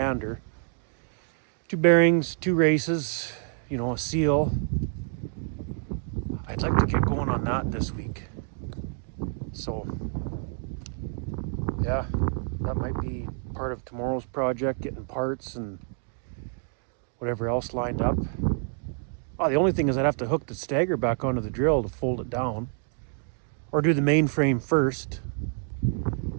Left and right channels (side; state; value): left; silent; 56 dB below the other